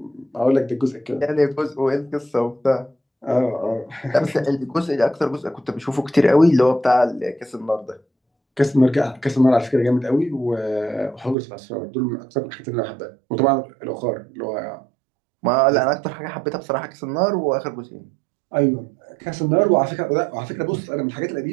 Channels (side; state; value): left; drops out; at 11.4 s